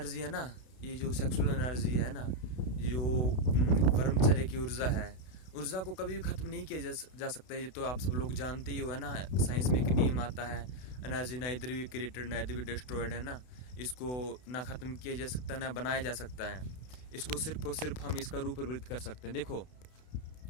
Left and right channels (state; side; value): late; right; 32 ms